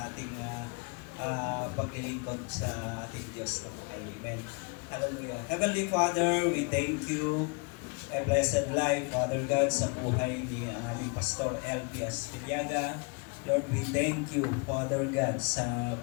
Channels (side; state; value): right; quieter; 33.1 dB